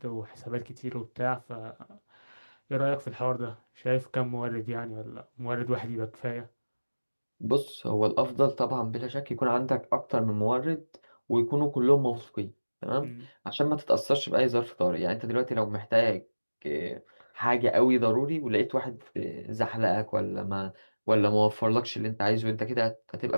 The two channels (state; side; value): inverted; both; correlation -1.00